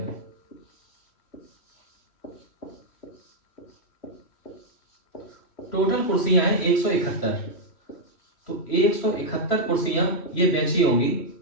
टोटल कुर्सियां हैं 171। तो 171 कुर्सियां ये बेची होंगी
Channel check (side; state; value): right; late; 3.1 ms